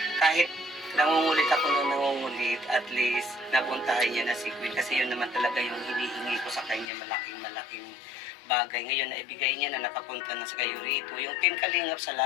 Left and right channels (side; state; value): right; drops out; at 6.9 s